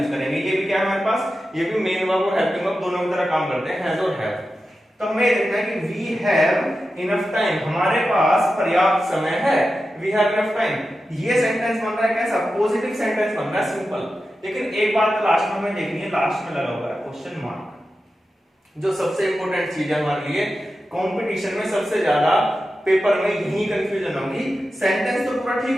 करेंगे। ये भी क्या है हमारे पास, ये भी मेन वर्ब और हेल्पिंग वर्ब दोनों की तरह काम करते हैं, हैज और हैव। तो हमें देखना है कि वी हैव इनफ टाइम, हमारे पास पर्याप्त समय है, वी हैव इनफ टाइम। ये सेंटेंस बन रहा है कैसा, पॉजिटिव सेंटेंस बन रहा है, सिंपल। लेकिन एक बात लास्ट में हमें देखनी है, लास्ट में लगा हुआ है क्वेश्चन मार्क, जो सबसे इंपॉर्टेंट चीज है हमारे लिए। कंपटीशन में सबसे ज्यादा पेपर में यही कंफ्यूजन होगी। सेंटेंस तो पूरा ठीक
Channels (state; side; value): normal; both; correlation 0.92